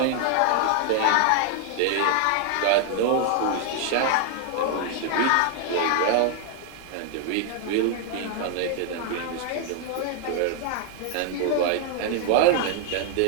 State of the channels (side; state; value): both; different; correlation 0.00